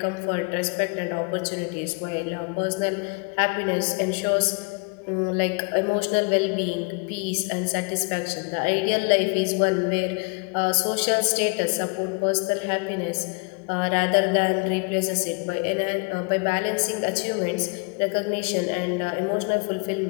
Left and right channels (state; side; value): quieter; right; 32.2 dB